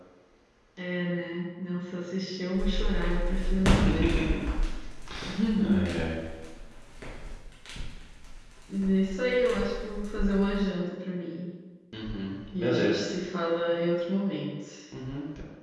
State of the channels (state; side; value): identical; both; correlation 1.00